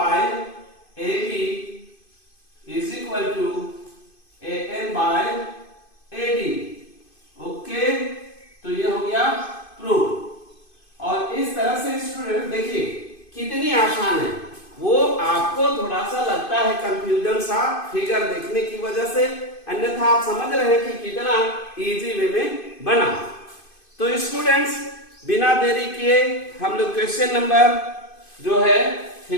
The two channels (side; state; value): right; late; 2.5 ms